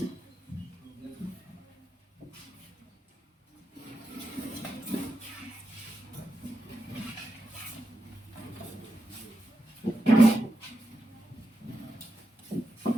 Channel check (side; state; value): both; normal; correlation 0.87